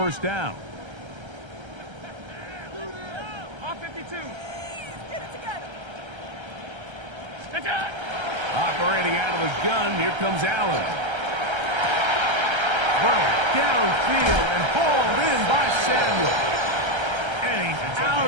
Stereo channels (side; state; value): left; late; 1.3 ms